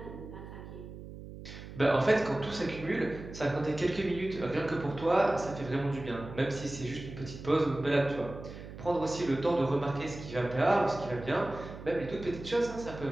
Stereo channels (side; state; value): right; noise; hum, 13 dB below the sound